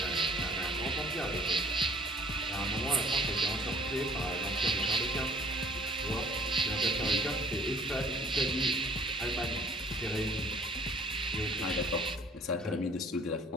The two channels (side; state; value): both; normal; correlation 0.54